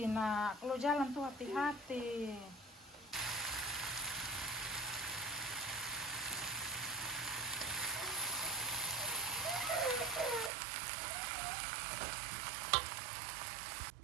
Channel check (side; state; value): left; drops out; at 10.5 s